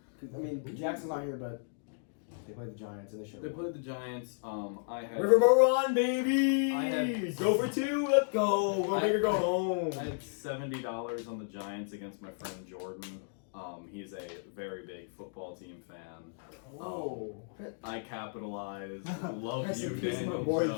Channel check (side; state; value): right; silent; digital silence